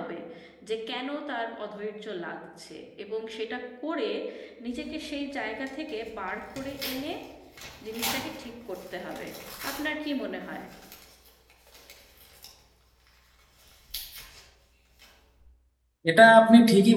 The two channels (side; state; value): both; identical; correlation 1.00